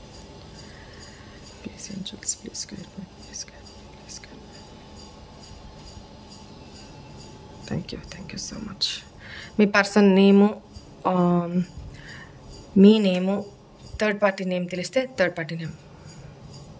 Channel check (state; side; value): identical; both; correlation 1.00